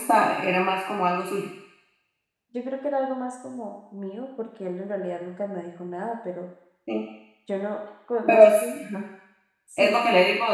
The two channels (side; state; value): both; identical; correlation 1.00